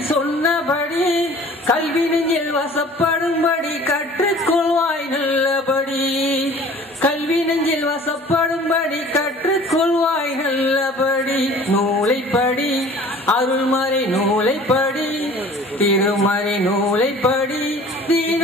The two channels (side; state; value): both; normal; correlation 0.47